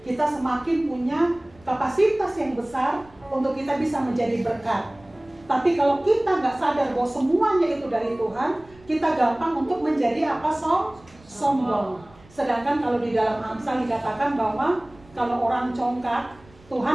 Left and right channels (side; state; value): right; noise; rumble, 26 dB below the sound